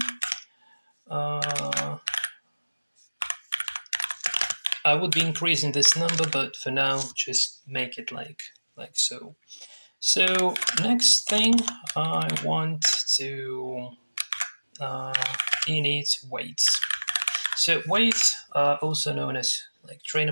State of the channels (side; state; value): both; inverted; correlation -1.00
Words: I would be increasing this number, but for now, just make it like so. So next thing, I want to init weights. So weights are also known as like